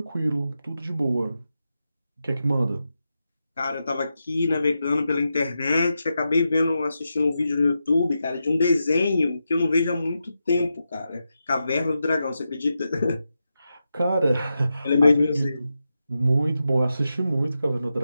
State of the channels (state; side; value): inverted; both; correlation -0.88